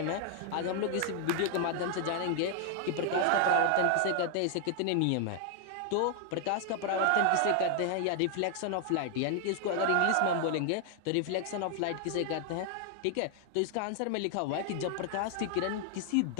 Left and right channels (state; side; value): different; both; correlation 0.00